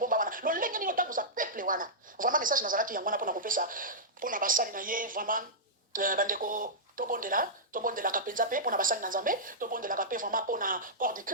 wana lolenge nini otambusa peuple wana vraiment message nazalaki yango wana mpona kopesa mpona basali na ye vraiment bandeko tobondelaka mpenza mpe mpona basali na nzambe tobondelaka mpe vraiment mpona corps de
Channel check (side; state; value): both; normal; correlation -0.12